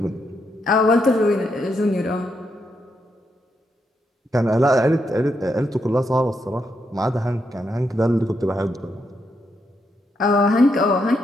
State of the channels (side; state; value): both; normal; correlation 0.80